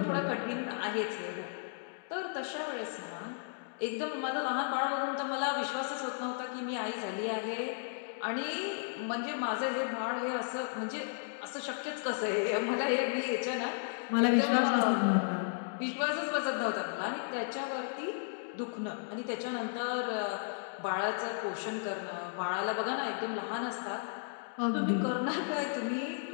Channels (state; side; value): silent; right; digital silence